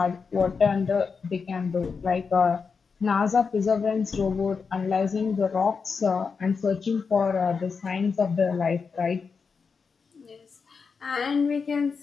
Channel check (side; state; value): right; quieter; 5.3 dB